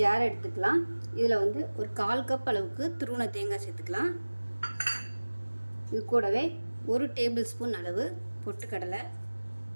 ஜார் எடுத்துக்கலாம். இதில் ஒரு 1/4 கப் அளவுக்கு துருவன தேங்காய் சேர்த்துக்கலாம். இது கூடவே 1 டேபிள் ஸ்பூன் அளவு பொட்டுக்கடலை,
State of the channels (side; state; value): both; inverted; correlation -1.00